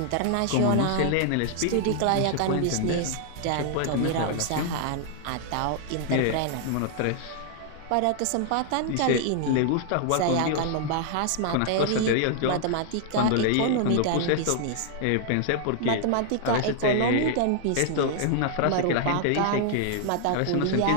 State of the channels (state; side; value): different; both; correlation 0.00